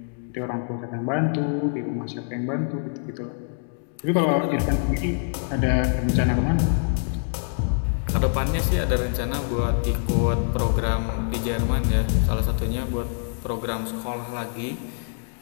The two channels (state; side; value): silent; right; digital silence